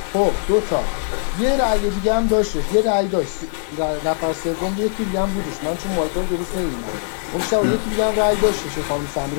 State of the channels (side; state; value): right; silent; digital silence